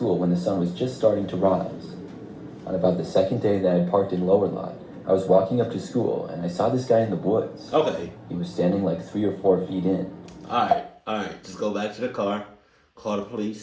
when the sun was just starting to rise. On about the second day that I had parked in Lower Lot, I was walking up to school and I saw this guy in the woods. Okay. He was standing like 3 or 4 feet in. All right. Just go back to the car, call the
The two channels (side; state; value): both; identical; correlation 1.00